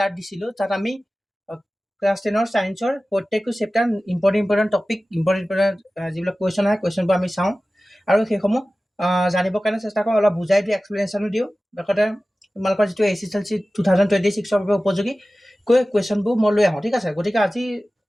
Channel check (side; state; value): both; normal; correlation 0.96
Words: দিছিলোঁ তাত আমি ক্লাছ 10ৰ ছায়েন্সৰ প্ৰত্যেকটো চেপ্টাৰ ইম্পৰ্টেণ্ট টপিক ইম্পৰ্টেণ্ট যিবিলাক কুৱেশ্যন আহে কুৱেশ্যনবোৰ আমি চাওঁ আৰু সেইসমূহ জানিবৰ কাৰণে চেষ্টা কৰোঁ, অলপ বুজাই দিওঁ, এক্সপ্লেনেশ্যনো দিওঁ। লগতে তোমালোকৰ যিটো SSLC 2026ৰ বাবে উপযোগী কুৱেশ্যনবোৰ মই লৈ আহোঁ। ঠিক আছে, গতিকে আজি